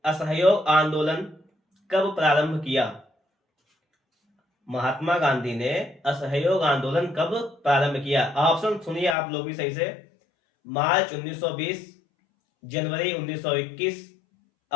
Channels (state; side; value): drops out; right; at 9.2 s